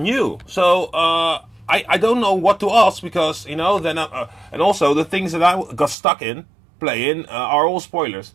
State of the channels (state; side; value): drops out; left; at 6.0 s